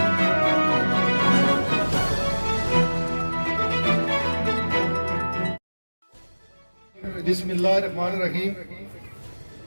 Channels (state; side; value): inverted; both; correlation -1.00